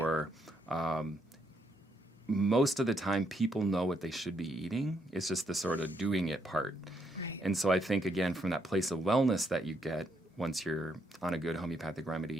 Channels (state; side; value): normal; both; correlation 0.75